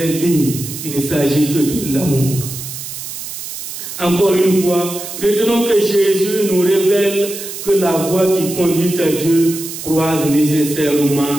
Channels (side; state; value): right; noise; hiss, 9 dB below the sound